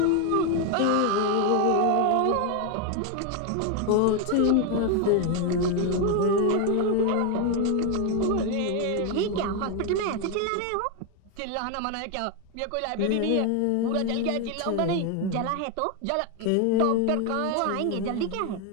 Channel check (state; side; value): different; both; correlation 0.01